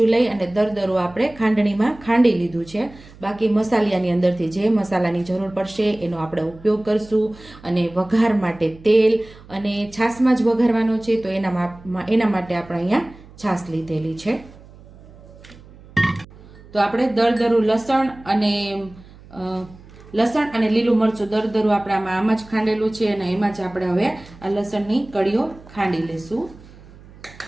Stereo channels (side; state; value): right; noise; hum, 22 dB below the sound